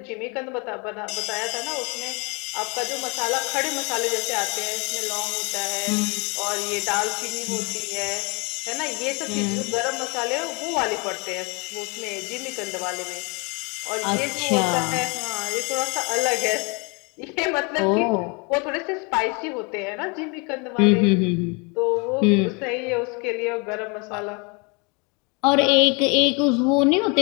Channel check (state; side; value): quieter; right; 31.3 dB